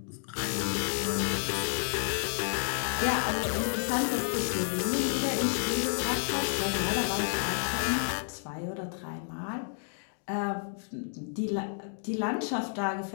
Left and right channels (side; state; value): right; silent; digital silence